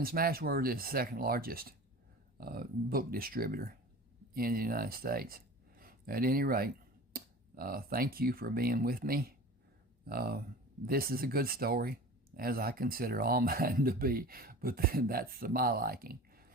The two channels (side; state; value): both; normal; correlation 0.38